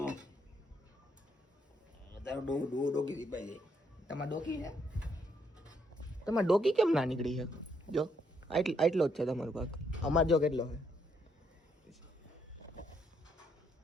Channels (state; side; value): normal; both; correlation 0.74